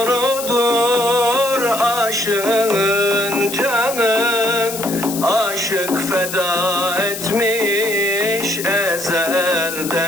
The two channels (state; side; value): noise; left; hiss, 8 dB below the sound